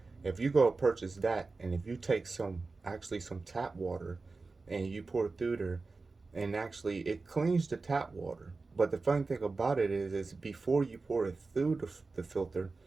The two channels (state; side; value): quieter; left; 3.9 dB